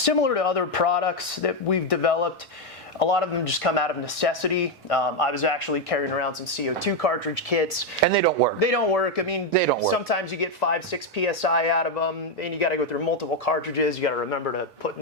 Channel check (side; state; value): both; normal; correlation 0.04